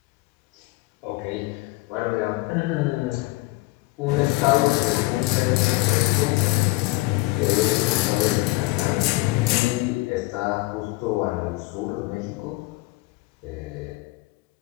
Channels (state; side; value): quieter; right; 21.7 dB